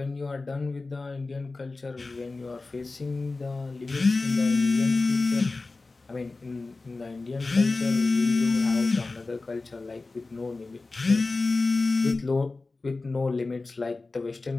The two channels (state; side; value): quieter; right; 3.6 dB